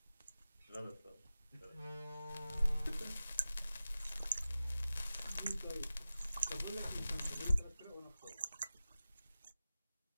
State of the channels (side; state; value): both; inverted; correlation -0.95